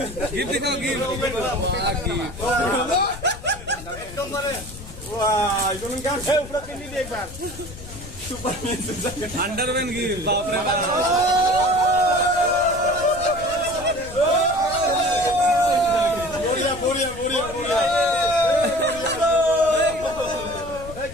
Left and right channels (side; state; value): left; noise; rumble, 14 dB below the sound